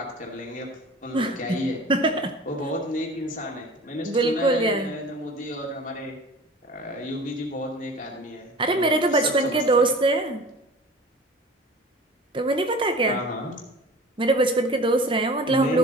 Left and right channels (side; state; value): both; normal; correlation 0.41